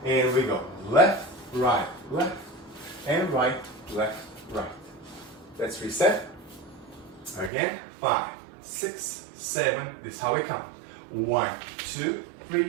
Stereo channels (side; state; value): left; drops out; at 7.5 s